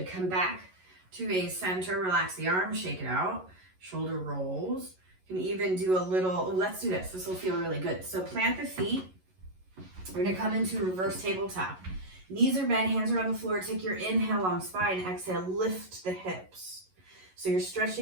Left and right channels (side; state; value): left; late; 11 ms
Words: come back to a center. Relax the arms, shake it out. Shoulder rolls. You can even do a little, let's do this. This will feel really good. So plant the feet. We're gonna come into reverse tabletop. Knees are bent, hands are on the floor. Take your inhale, long spine. Exhale, lift the hips. So you're